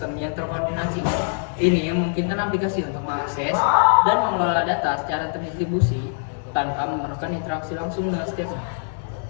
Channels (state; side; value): silent; right; digital silence